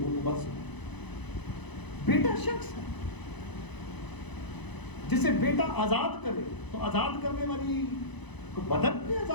کو مت سنیں. بیٹا شخص ہے جسے بیٹا آزاد کرے تو آزاد کرنے والی کو بدن نے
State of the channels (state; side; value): late; right; 0.99 ms